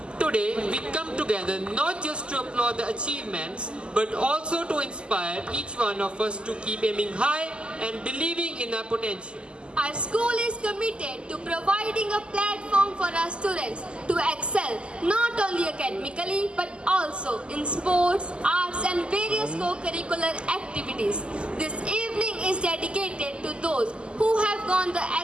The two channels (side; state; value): left; late; 0.052 ms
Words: Today, we come together not just to applaud the achievements, but also to inspire each one of us to keep aiming high and believing in our potential. Our school is committed to providing a platform for our students to excel not only academically but also in sports, arts and various co-curricular activities. This evening is dedicated to those who have gone the